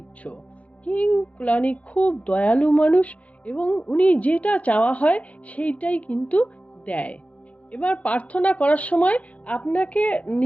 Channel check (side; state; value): right; late; 0.066 ms